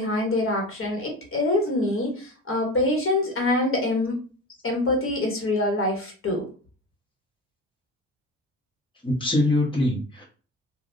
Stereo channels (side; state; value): both; normal; correlation 0.32